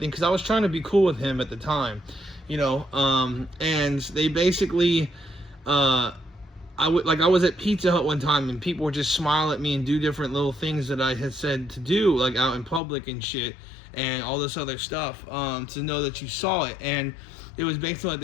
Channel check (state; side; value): drops out; right; at 12.8 s